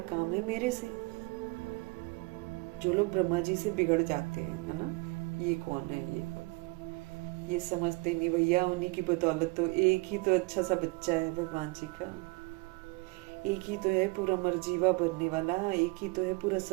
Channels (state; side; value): quieter; left; 26.6 dB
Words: काम है मेरे से। जो लोग ब्रह्मा जी से बिगड़ जाते हैं, है ना, ये कौन है, ये कौन, ये समझते नहीं भैया, उन्हीं की बदौलत तो एक ही तो अच्छा सा बच्चा है भगवान जी का, एक ही तो है पूरा मरजीवा बनने वाला, एक ही तो है पूरा